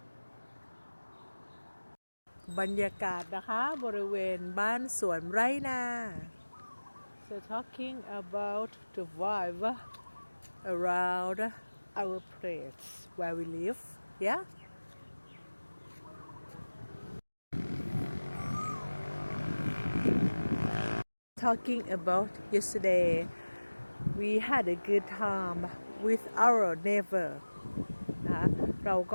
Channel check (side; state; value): both; inverted; correlation -1.00